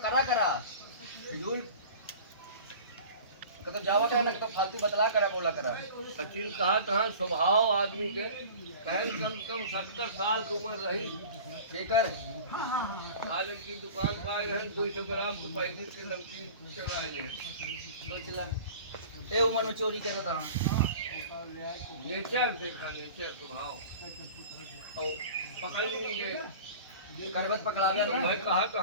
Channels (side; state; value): both; inverted; correlation -0.40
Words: करा करा फिजूल तो जावा करा ना तो फालतू बतला करा बोला करा सचिन कहा कहाँ स्वभाव आदमी के कहीं कम से कम 70 साल की उम्र रही बेकर आज की दुकान पर आए हैं 200 ग्राम को पैकेट के नमकीन चलाए हैं सोच ला ए उम्र में चोरी करे था नेचर देखा नेचर स्वभाव और पकड़ नहीं गए करबत पकड़ावे ना भाई